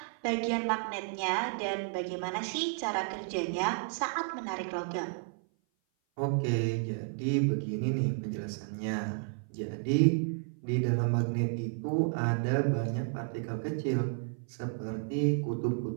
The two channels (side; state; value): left; silent; 56 dB below the other